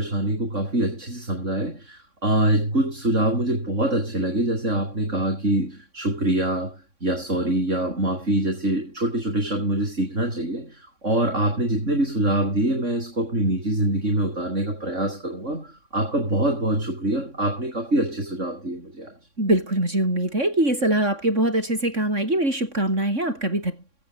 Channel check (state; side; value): late; left; 3.6 ms